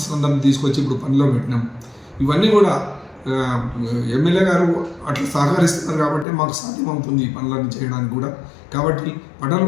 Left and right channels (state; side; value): drops out; right; at 6.2 s